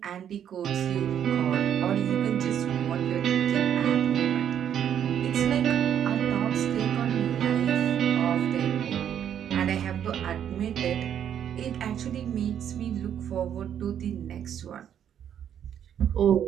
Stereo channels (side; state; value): left; quieter; 9.4 dB